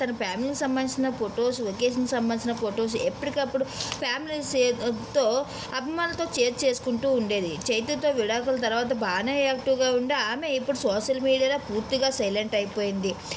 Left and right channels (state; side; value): identical; both; correlation 1.00